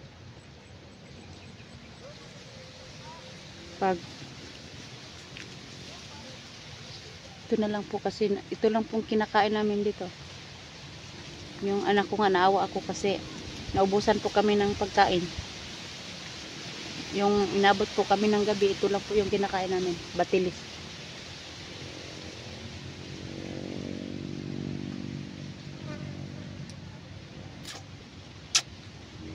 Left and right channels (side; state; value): both; identical; correlation 1.00